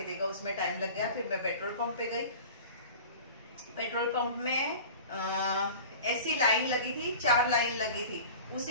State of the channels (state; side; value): inverted; both; correlation -0.39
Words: देगा, उसमें टाइम लग गया। फिर मैं पेट्रोल पंप पे गई। पेट्रोल पंप में ऐसी लाइन लगी थी, 4 लाइन लगी थी।